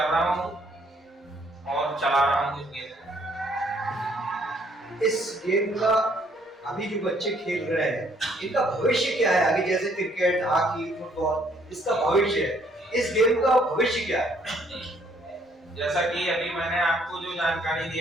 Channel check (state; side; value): normal; both; correlation 0.65